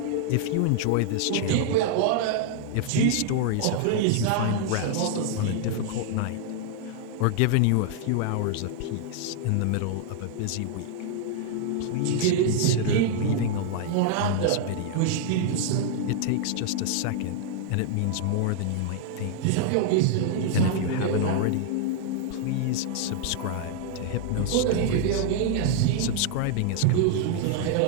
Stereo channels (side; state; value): both; different; correlation 0.00